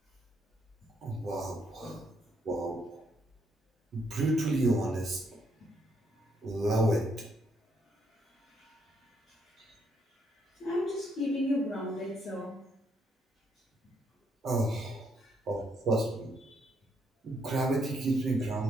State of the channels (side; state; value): both; normal; correlation 0.74